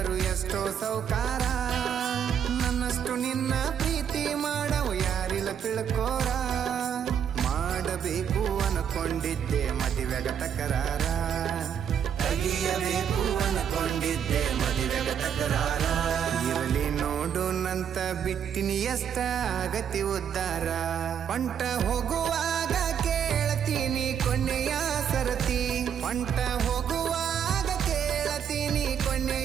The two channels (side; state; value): left; quieter; 8.3 dB